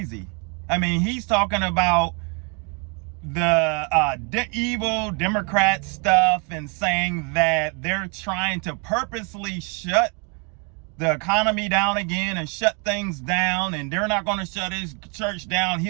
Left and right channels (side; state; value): left; quieter; 34.7 dB